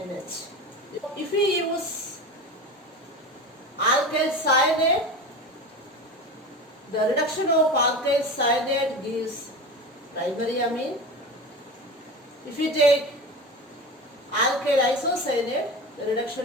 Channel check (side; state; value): both; normal; correlation 0.29